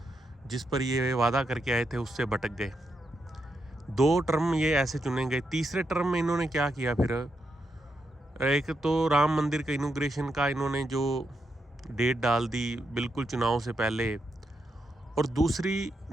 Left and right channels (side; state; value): both; normal; correlation 0.83